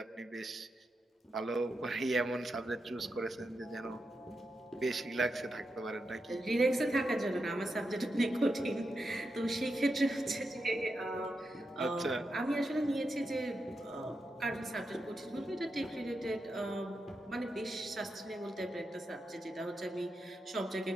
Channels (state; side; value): normal; both; correlation 0.87